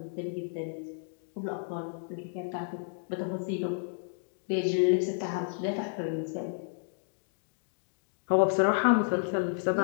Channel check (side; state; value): right; silent; digital silence